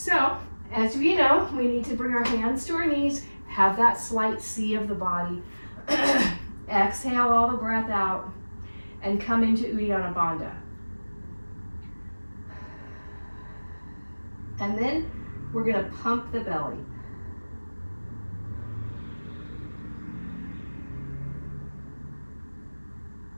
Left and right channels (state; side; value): inverted; both; correlation -1.00